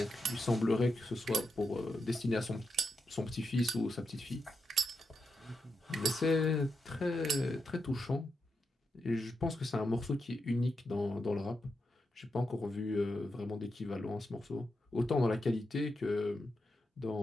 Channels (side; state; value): both; normal; correlation 0.86